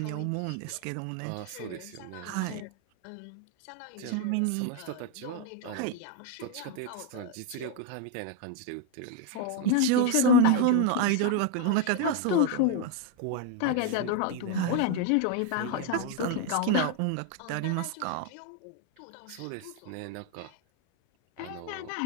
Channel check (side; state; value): both; different; correlation 0.01